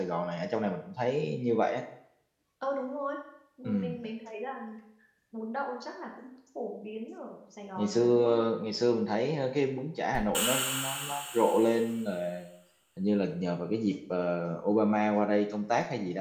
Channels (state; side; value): identical; both; correlation 1.00